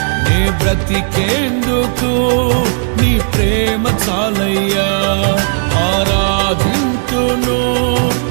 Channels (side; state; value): left; silent; digital silence